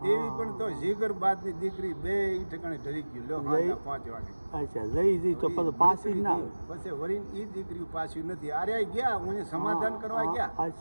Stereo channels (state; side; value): inverted; both; correlation -1.00